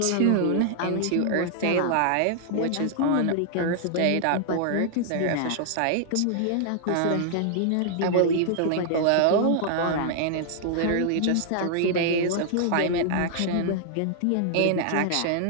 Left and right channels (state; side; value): different; both; correlation -0.01